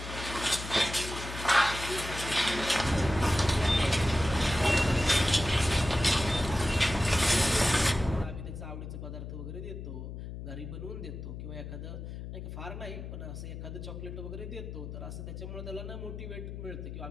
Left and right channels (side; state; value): left; noise; hum, 8 dB below the sound